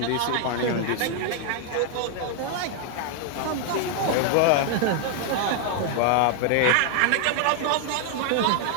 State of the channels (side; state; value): both; different; correlation 0.00